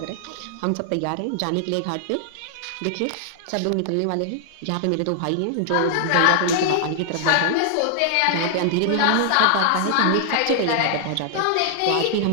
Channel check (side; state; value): both; different; correlation -0.01